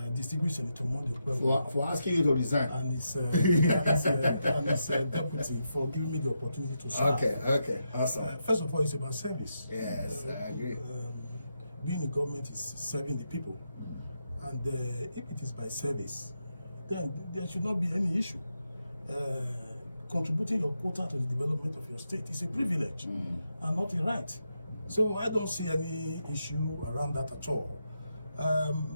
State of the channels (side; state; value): both; inverted; correlation -0.84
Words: distinguished Senator Mondi for asking you to resign, and his deputy for giving me the opportunity to serve. Okay, awesome. First of all, it's about service. Yes, I agree. Being in government is serving the people, and if it is by service, then there should not be any issue. Contributing your quota to the development of your state is a privilege and not a right. So I don't see any issue around that at all.